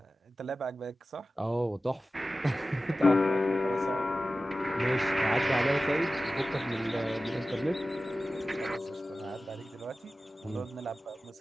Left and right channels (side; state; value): both; normal; correlation 0.95